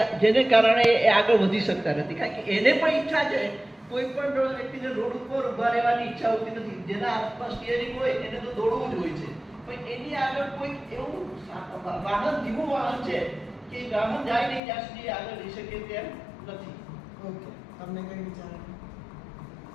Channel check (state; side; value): drops out; right; at 14.6 s